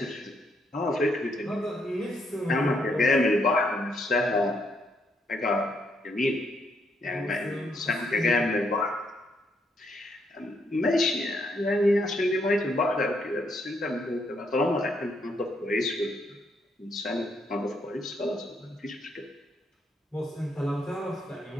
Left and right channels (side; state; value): both; normal; correlation 0.74